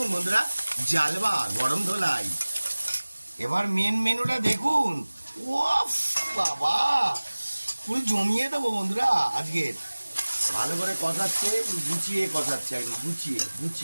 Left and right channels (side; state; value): both; inverted; correlation -1.00